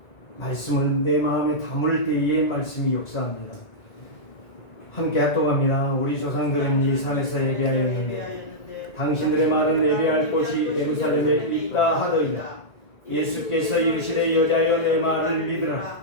말씀을 내 마음에 담을 때에 말씀이 역사합니다. 함께 합독합니다. 우리 조상들은 이 산에서 예배하였는데 당신들의 말은 예배할 곳이 예루살렘에 있다 하더니 예수께서 이르시되 여자여 내 말을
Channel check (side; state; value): right; late; 1.9 ms